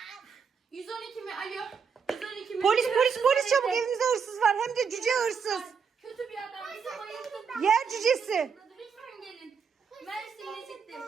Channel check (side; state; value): left; quieter; 6.2 dB